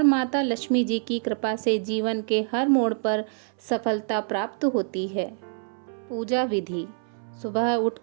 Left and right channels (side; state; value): left; silent; 61 dB below the other